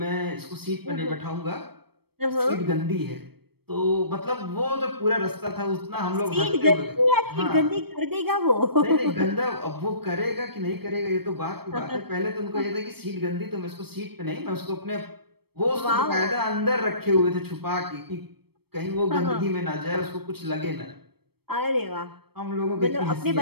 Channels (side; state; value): left; late; 0.97 ms